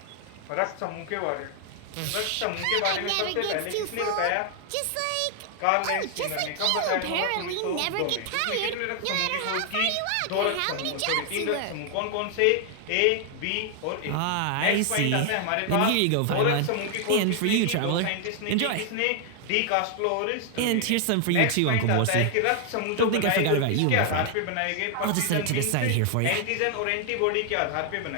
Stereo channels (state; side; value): different; both; correlation 0.00